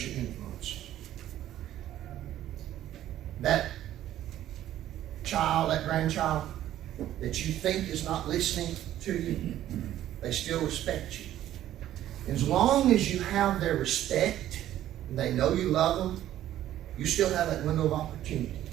your influence. That child, that grandchild, that you think is not listening to you, they still respect you. As long as you have their respect, and they know you love them, you still have that window of opportunity.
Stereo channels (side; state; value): left; quieter; 12.7 dB